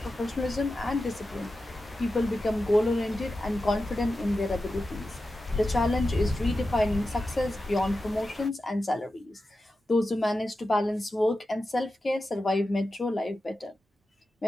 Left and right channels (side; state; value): both; normal; correlation 0.92